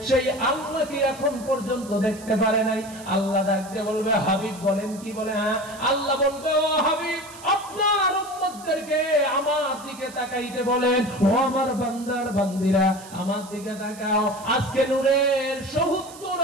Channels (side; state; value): right; noise; hiss, 18 dB below the sound